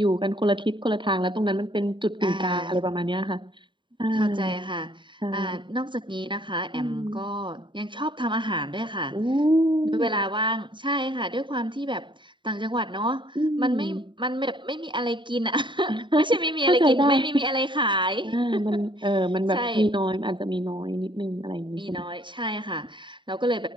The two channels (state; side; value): late; left; 0.23 ms